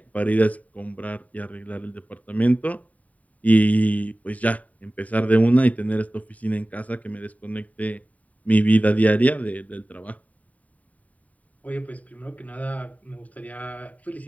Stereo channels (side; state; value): right; late; 0.070 ms